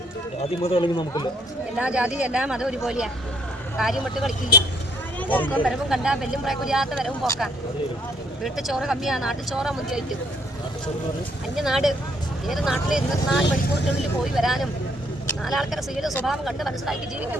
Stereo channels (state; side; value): normal; both; correlation 0.67